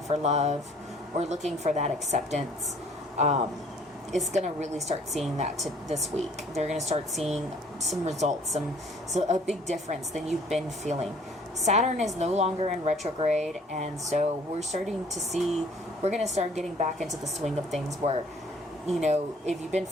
for love or looking for that acceptance is going to really start seeing that this week. They're going to start seeing some results, so a big difference than you've been feeling. Saturn is no longer in retrograde, and so we're going to start getting back into the swing of things where, if you've been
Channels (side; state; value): both; normal; correlation 0.57